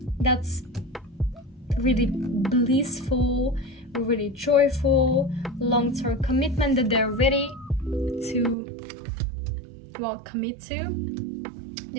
that's really blissful, really joyful, long-term commitment that they're ready to, well, commit to.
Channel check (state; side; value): drops out; left; at 8.6 s